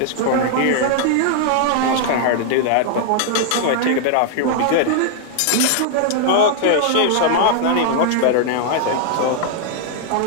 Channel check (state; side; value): different; both; correlation -0.01